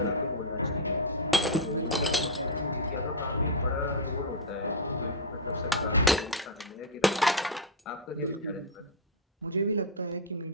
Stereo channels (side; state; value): both; normal; correlation -0.01